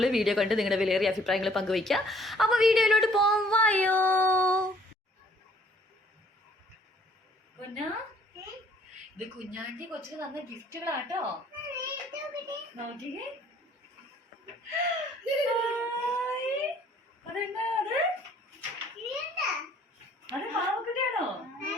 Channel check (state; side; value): normal; both; correlation 0.59